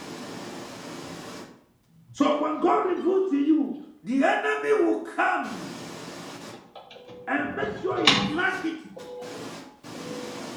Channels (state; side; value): identical; both; correlation 1.00